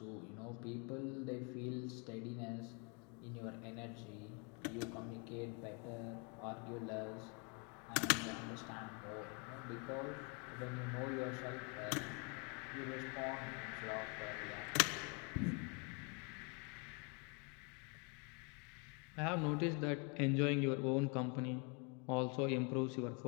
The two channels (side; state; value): right; quieter; 34.4 dB